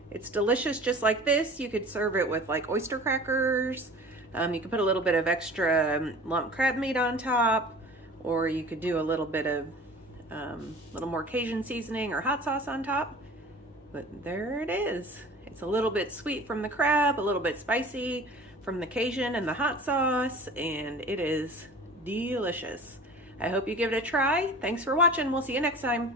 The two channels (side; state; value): both; normal; correlation 0.42